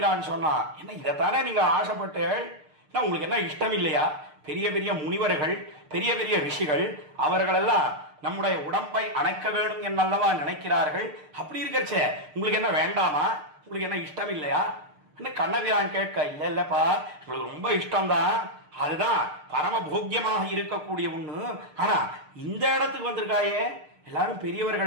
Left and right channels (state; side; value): late; left; 6.6 ms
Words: சொன்னா, என்ன இதைத்தானே நீங்க ஆசைப்பட்டு, உங்களுக்கு என்ன இஷ்டம் இல்லையா? பெரிய பெரிய முனிவர்கள், பெரிய பெரிய ரிஷிகள், அவர்களெல்லாம் நம்முடைய உடம்பை அணைக்க வேண்டும் என்னல்லவா நினைக்கிறார்கள். அப்படி இருக்கச்சே உங்களுக்கு என்ன வேண்டாமா? உங்களுக்கு என்ன இஷ்டம் இல்லையா? கண்ணபிரான் கேட்க, இல்ல இல்லப்பா, உங்களுக்கு ரொம்ப இஷ்டம்தான், அதுதான் பரம போக்கியமாக இருக்கக்கூடிய ஒண்ணு. ஆனா இந்த இடத்துக்கு வந்திருக்காயே, எல்லாரும்